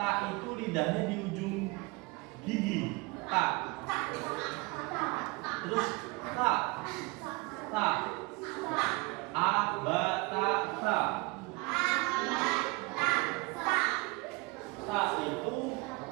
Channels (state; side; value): quieter; left; 25.7 dB